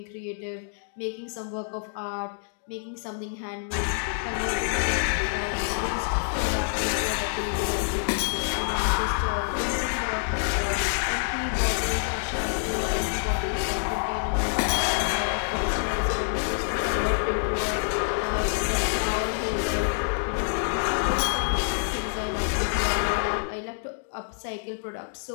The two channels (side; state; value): right; silent; digital silence